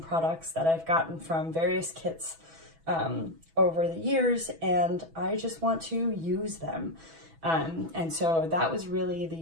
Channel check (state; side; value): late; left; 6.1 ms